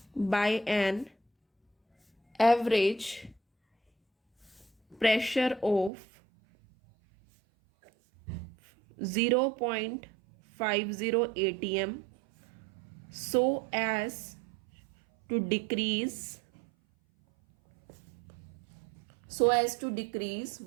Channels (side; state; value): left; drops out; at 5.9 s